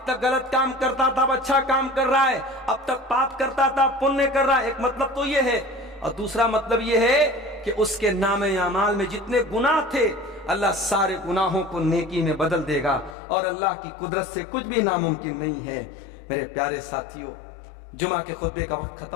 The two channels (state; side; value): drops out; right; at 13.2 s